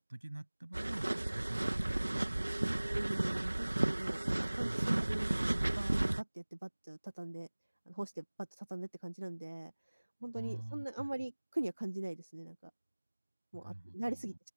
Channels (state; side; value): inverted; both; correlation -1.00